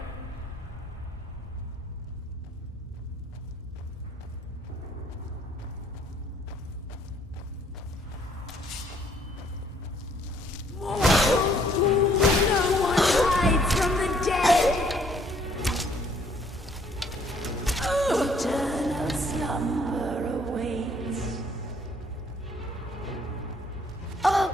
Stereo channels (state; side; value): normal; both; correlation 0.63